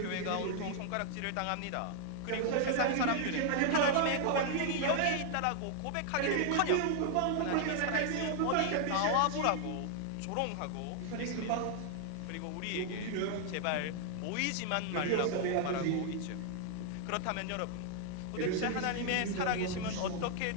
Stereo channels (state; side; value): different; both; correlation 0.00